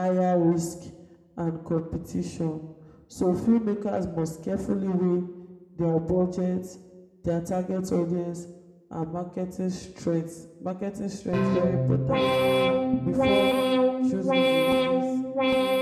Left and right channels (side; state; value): both; identical; correlation 1.00